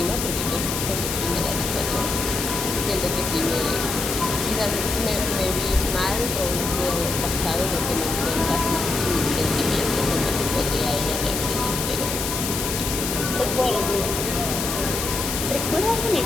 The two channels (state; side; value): noise; left; hiss, 3 dB below the sound